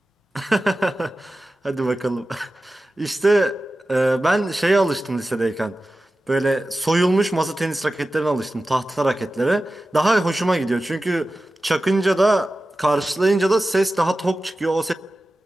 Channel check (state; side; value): normal; both; correlation 0.95